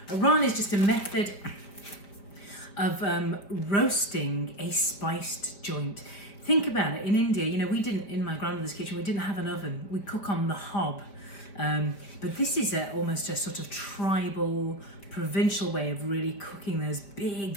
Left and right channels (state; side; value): late; right; 5.1 ms